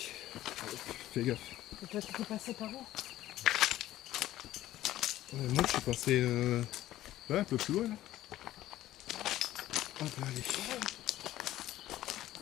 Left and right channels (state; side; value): quieter; right; 14.3 dB